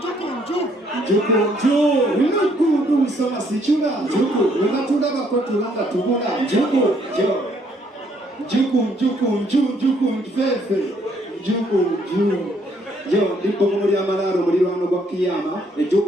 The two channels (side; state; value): both; normal; correlation 0.68